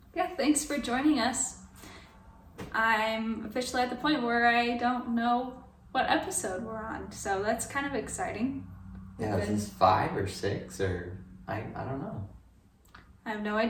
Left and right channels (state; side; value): identical; both; correlation 1.00